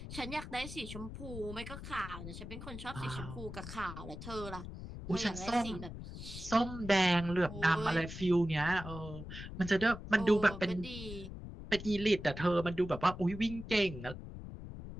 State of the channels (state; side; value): noise; left; rumble, 10 dB below the sound